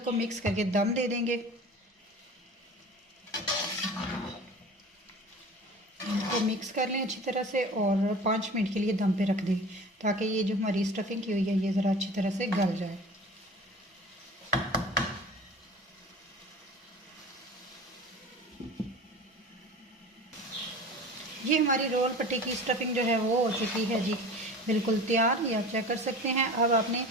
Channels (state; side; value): normal; both; correlation 0.39